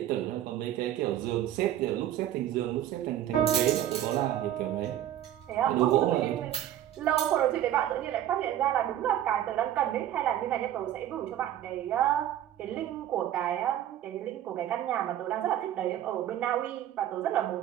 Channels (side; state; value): left; quieter; 11.8 dB